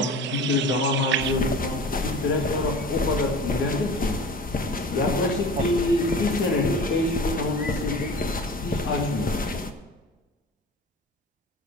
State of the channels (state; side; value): normal; both; correlation 0.37